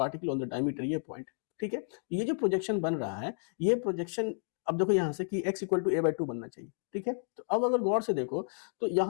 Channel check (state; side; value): silent; right; digital silence